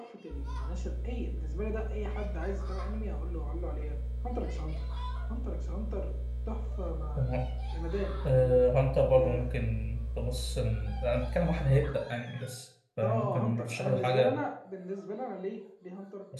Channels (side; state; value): both; identical; correlation 1.00